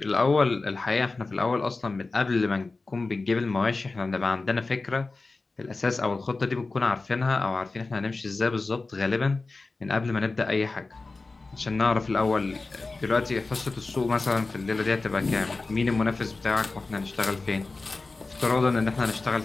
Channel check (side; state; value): right; quieter; 3.6 dB